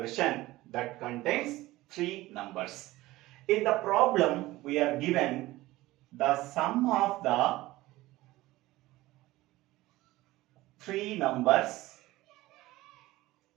that contains three numbers. In the problem, we are given the sum of the three numbers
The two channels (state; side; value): quieter; left; 18.0 dB